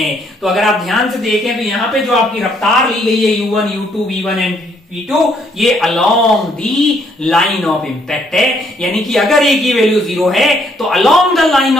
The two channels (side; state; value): both; normal; correlation 0.69